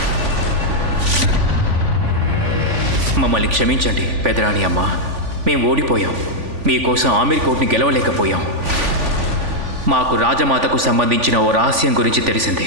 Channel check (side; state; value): left; late; 3.5 ms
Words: మమ్మల్ని క్షమించండి పెదరాణి అమ్మ. మేము ఓడిపోయాం. మీకోసం ఆమీర్ కోట్ని గెలవలేకపోయాం. మాకు రాజమాతకు సంబంధించిన ఓ రహస్యం గురించి